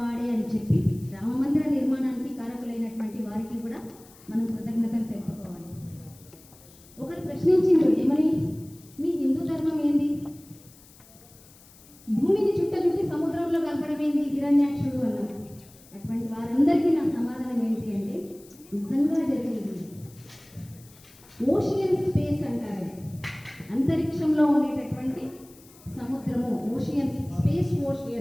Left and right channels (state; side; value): noise; left; hiss, 24 dB below the sound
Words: అని చెప్పి రామమందిర నిర్మాణానికి కారకులైనటువంటి వారికి కూడా మనం కృతజ్ఞతలు తెలుపుకోవాలి. ఒకరు ప్రశ్నించిండు, ఏమని, మీ హిందూ ధర్మం ఏంది, భూమిని చుట్టి సముద్రంలో కలపడం ఏంది హిరణ్యాక్షుడు అన్నారు. అటువంటి వారందరికీ నా సమాధానం ఏంటి అంటే, నిజంగా జరిగింది ఓషియన్ స్పేస్ అంటారు. అంతరిక్షంలో ఉండేటటువంటి సముద్రము ఓషియన్ స్పేస్.